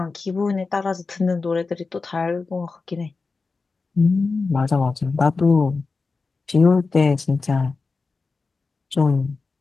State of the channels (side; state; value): right; quieter; 4.2 dB